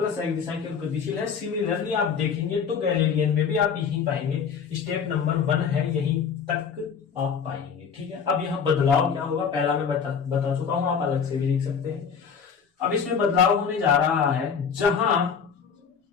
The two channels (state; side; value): quieter; right; 6.6 dB